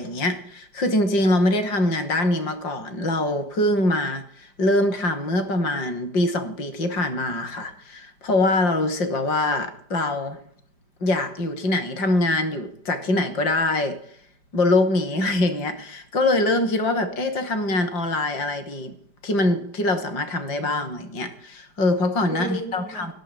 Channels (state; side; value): late; right; 5.0 ms